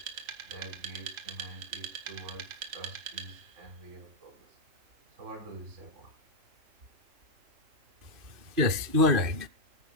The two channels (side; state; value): left; late; 2.6 ms